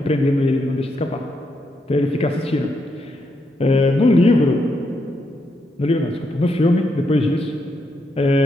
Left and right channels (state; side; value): normal; both; correlation 0.80